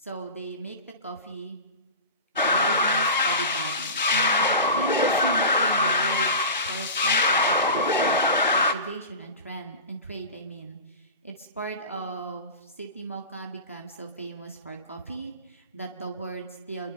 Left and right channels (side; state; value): both; inverted; correlation -0.30